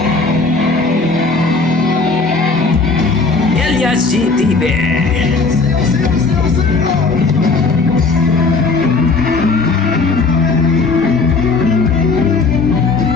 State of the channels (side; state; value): right; quieter; 3.9 dB